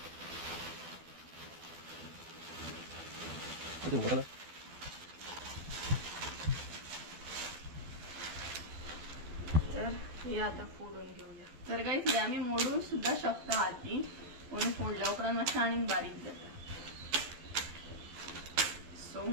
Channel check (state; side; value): late; left; 12 ms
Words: तर हे आता फोडून घेऊया तर काही हे आम्ही मोडून सुद्धा शकता हाती म्हणून फोडल्या उपरांत मातशें आनीक बारीक जाता सो